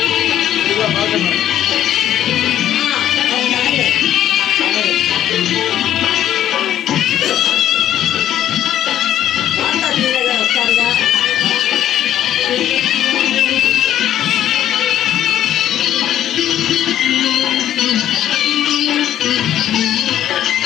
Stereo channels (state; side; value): quieter; right; 11.5 dB